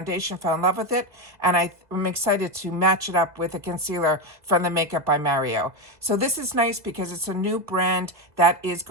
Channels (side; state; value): left; late; 2.0 ms